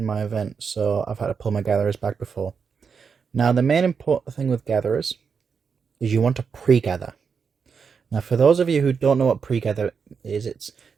my event, so I've had to pull my gatherers back before. Now, the main important thing with gatherers is you want to pre-gather. Now, for those of you who don't know what pre-gather is, it's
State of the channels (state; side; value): quieter; left; 6.0 dB